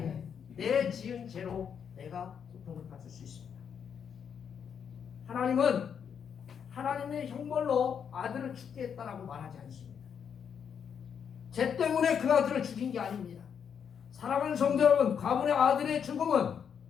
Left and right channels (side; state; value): right; quieter; 7.5 dB